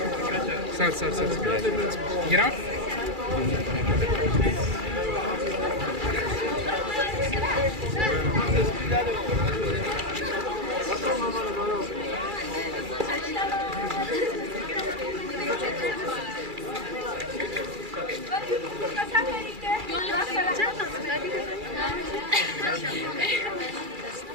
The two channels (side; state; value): left; late; 2.3 ms